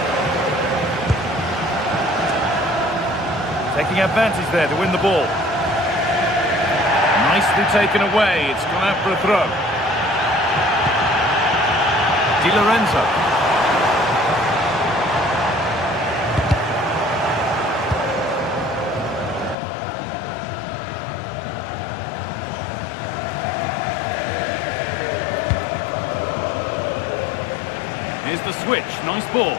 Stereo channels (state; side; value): drops out; right; at 19.6 s